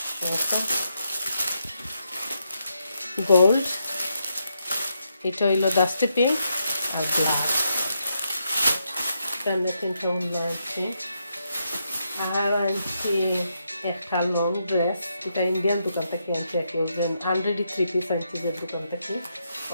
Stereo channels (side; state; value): both; inverted; correlation -0.81